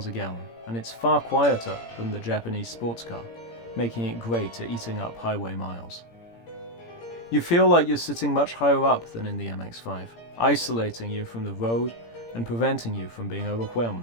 a gallon, and it's far quieter than the Japanese sports car, making it great at eating up highway miles. You feel like you're sitting much higher up than in the MX-5, isolating you from the road and preventing you from being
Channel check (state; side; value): late; right; 17 ms